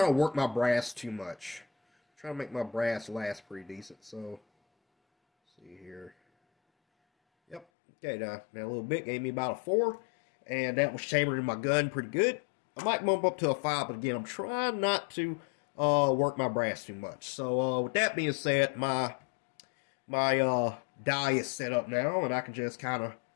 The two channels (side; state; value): right; drops out; at 7.7 s